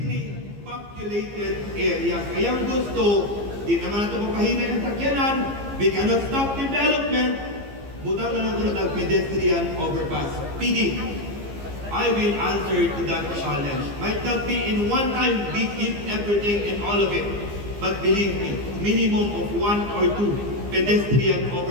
populated areas. Kaya gusto, di naman natin mapahinay ang sakyanan, we cannot stop development, butang na natin ang pedestrian overpass. PD, I will answer to that challenge. Might not be in one time, we give everything and all of it. But believe me, minimum of 1 or 2 pedestrian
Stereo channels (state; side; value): late; left; 15 ms